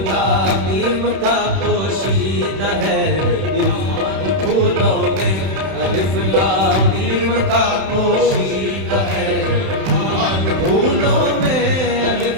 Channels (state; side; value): late; left; 31 ms